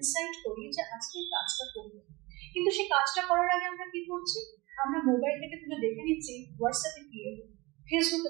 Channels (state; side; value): quieter; left; 23.0 dB